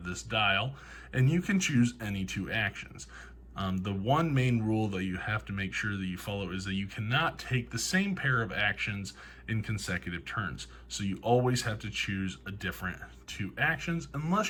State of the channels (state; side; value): identical; both; correlation 1.00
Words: this dial and you can choose any 2 actions. The one main rule that you have to make sure that you follow is that you cannot take the same pair of actions in consecutive turns. So you always have to choose a different 2 actions